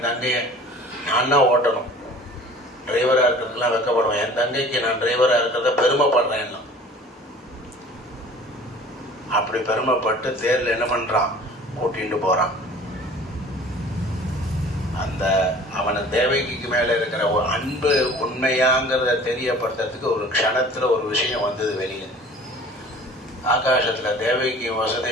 தங்கைய நான் தான் ஓட்டணும், டிரைவரா இருக்கிறதுலாம் வெக்கப்படுவேன், என் தங்கைக்கு நான் டிரைவரா இருக்கிறத பெருமைப்படுறேன். அப்படி பெருமைப்பட்டு தேர்ல என்ன பண்றான், கூட்டிட்டு போறான். அந்த அவன தேவகிக்கு மேல இருக்கிற ஒரு அன்பு உண்மையாங்கிறத தெரியப்படுத்துறதுக்கு ஒரு க்ஷணத்துல ஒரு விஷயம் வந்தது வெளியில. ஆகாசத்துல தேவகிக்கு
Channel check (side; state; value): both; normal; correlation 0.46